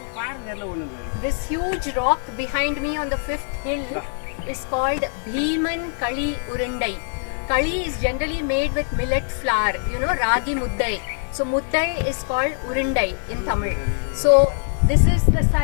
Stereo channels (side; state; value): right; silent; digital silence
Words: This huge rock behind me on the 5th hill is called Bhiman Kali Urundai. Kali is generally made with millet flour, ragi muddai. So muddai is called Urundai in Tamil. So this is the